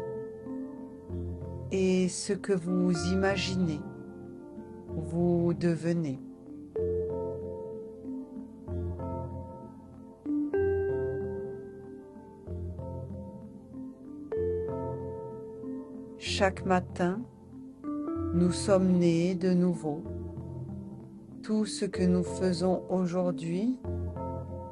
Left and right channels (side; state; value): both; identical; correlation 1.00